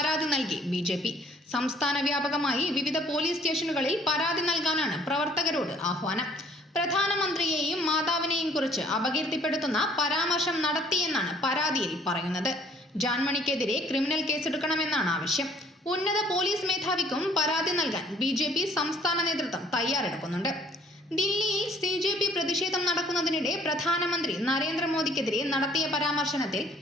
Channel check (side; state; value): both; normal; correlation 0.58